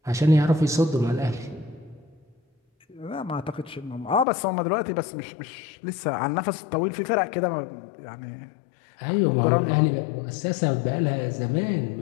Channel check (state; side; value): drops out; right; at 4.2 s